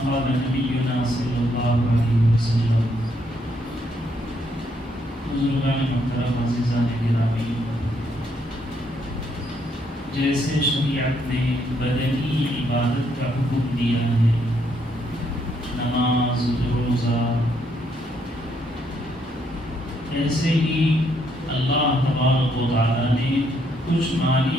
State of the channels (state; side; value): normal; both; correlation 0.73